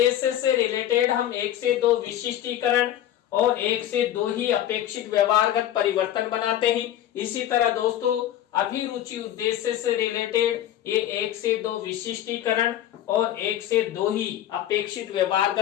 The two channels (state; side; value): quieter; right; 11.9 dB